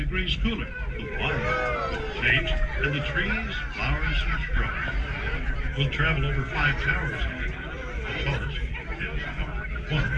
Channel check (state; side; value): identical; both; correlation 1.00